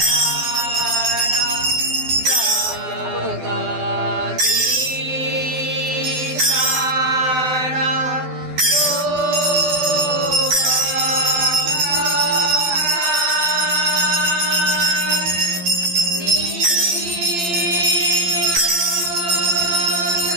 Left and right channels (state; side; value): late; left; 12 ms